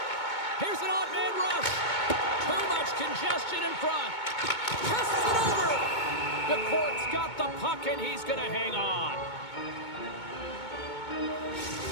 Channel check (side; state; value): right; late; 2.2 ms